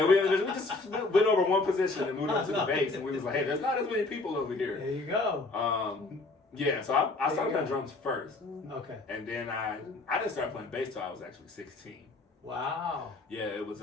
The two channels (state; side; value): quieter; right; 3.4 dB